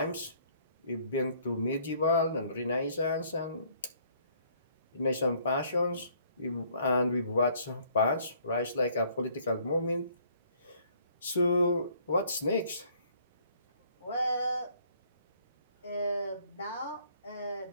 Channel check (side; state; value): both; inverted; correlation -0.62